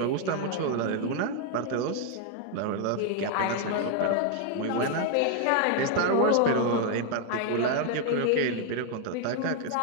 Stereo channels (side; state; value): both; different; correlation 0.00